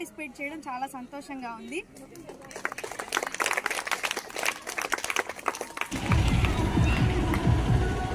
చేయడం చాలా సంతోషంగా ఉంది.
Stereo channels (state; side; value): identical; both; correlation 1.00